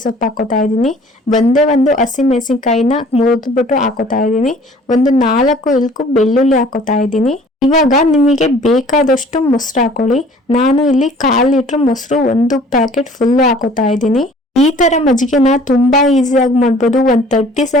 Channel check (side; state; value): both; normal; correlation 0.52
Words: ಸೊಪ್ಪು ಹಾಕೋತಾ ಇದ್ದೀನಿ. ಒಂದು ಹಸಿಮೆಣಸಿನಕಾಯಿನ ಮುರಿದ್ಬಿಟ್ಟು ಹಾಕೋತಾ ಇದ್ದೀನಿ. ಒಂದು 4 ಇಲ್ಕು ಬೆಳ್ಳುಳ್ಳಿ ಹಾಕೋತಾ ಇದ್ದೀನಿ. ಇವಾಗ ನಿಮಗೆ ಬೇಕಾದಷ್ಟು ಮೊಸರು ಹಾಕೊಳ್ಳಿ. ನಾನು ಇಲ್ಲಿ 1/4 ಲೀಟರ್ ಮೊಸರು 1 ಪ್ಯಾಕೆಟ್ ಫುಲ್ ಹಾಕೋತಾ ಇದ್ದೀನಿ. ಈ ತರ ಮಜ್ಜಿಗೆನ ತುಂಬಾ ಈಸಿಯಾಗಿ ಮಾಡ್ಬೋದು. 30